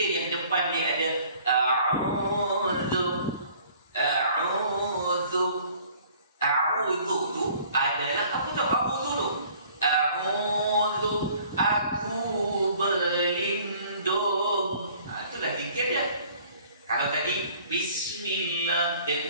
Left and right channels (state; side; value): inverted; both; correlation -0.54